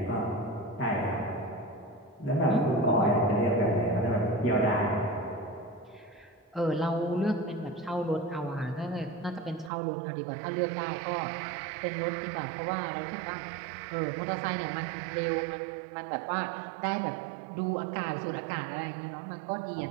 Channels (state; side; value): drops out; left; at 9.7 s